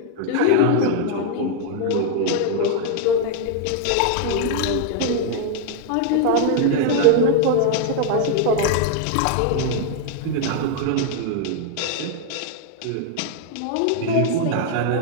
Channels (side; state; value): both; different; correlation 0.00